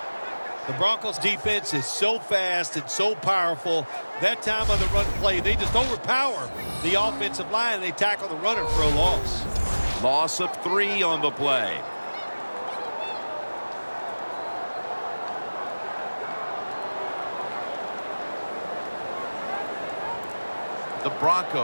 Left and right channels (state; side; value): inverted; both; correlation -1.00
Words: The Broncos defense is so fast and so powerful. That time on the run play, they just overpower the offensive line and they tackle the runner for a loss. Loss of 3 on the play. The